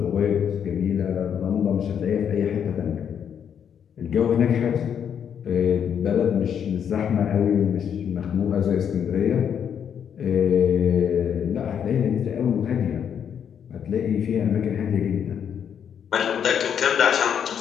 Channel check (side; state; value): right; quieter; 8.2 dB